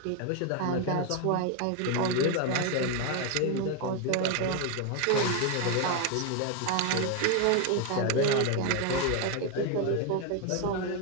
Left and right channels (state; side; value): different; both; correlation 0.01